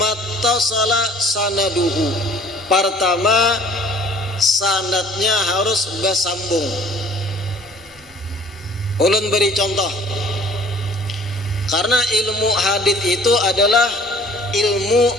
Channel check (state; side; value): normal; both; correlation 0.52